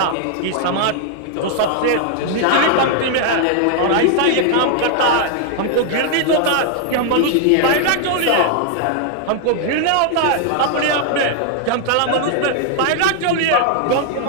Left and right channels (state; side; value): different; both; correlation 0.00